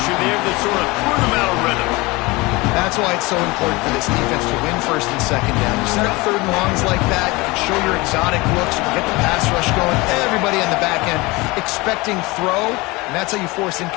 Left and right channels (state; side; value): quieter; right; 23.3 dB